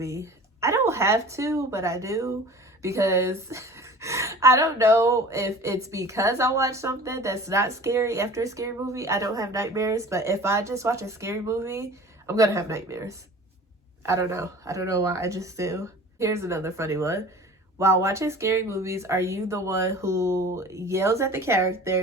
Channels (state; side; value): normal; both; correlation 0.42